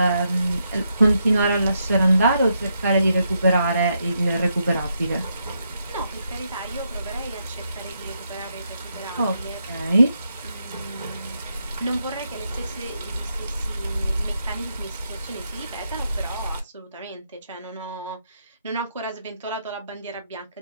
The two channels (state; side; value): inverted; both; correlation -0.80